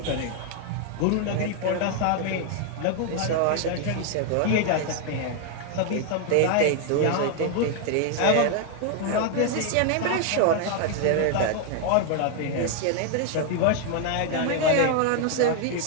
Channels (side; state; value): both; different; correlation 0.01